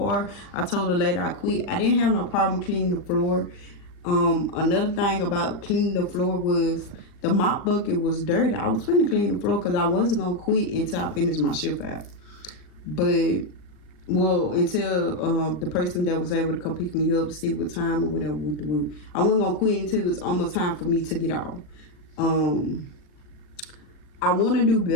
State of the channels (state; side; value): late; right; 39 ms